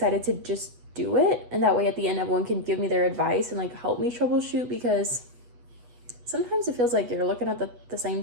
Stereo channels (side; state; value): left; late; 8.2 ms